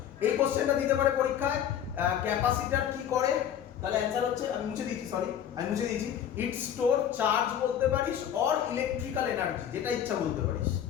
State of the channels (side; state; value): right; quieter; 9.6 dB